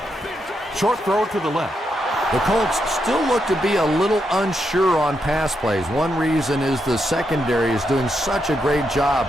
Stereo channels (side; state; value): both; normal; correlation 0.82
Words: Short throw to the left. The Colts still look to be a little unsure on pass plays. One reason is the secondary is doing such a great job